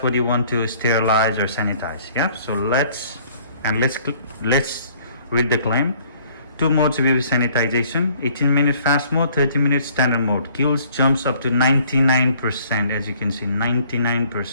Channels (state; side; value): inverted; both; correlation -0.59